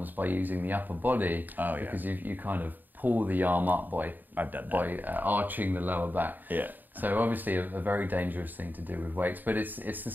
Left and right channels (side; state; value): left; late; 0.088 ms